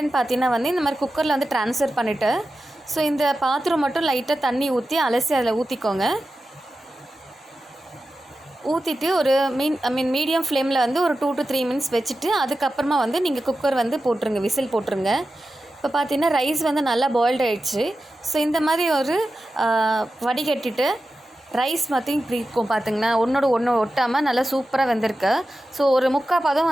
பார்த்திங்கன்னா வந்து இந்த மாதிரி குக்கரில் வந்து ட்ரான்ஸ்ஃபர் பண்ணிவிட்டு ஸோ இந்த பாத்திரம் மட்டும் லைட்டாக தண்ணி ஊற்றி அலசி அதில் ஊற்றிக்கோங்க. ஊற்றிட்டு ஒரு மீடியம் ஃப்ளேமில் வந்து ஒரு 2 to 3 மினிட்ஸ் வச்சுட்டு அதுக்கப்புறமா வந்து நீங்கள் குக்கர் வந்து போட்டுருங்க, விசில் போட்டுருங்க. இப்போ பார்த்தீங்கன்னா ரைஸ் வந்து நல்லா பாயில்டு ஆகிடுச்சு. ஸோ இந்த மாதிரி ஒரு வடிகட்டிட்டு ரைஸ் மாற்றி இப்படி இருக்கும் பார்த்திங்கன்னா ஒன்றோட ஒன்று ஒட்டாமல் நல்லா சூப்பராக வெந்திருக்கு. ஸோ ஒரு 3/4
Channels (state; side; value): normal; both; correlation 0.93